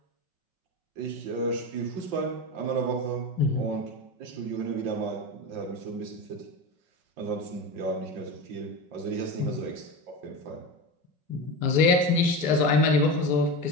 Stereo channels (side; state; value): left; late; 5.1 ms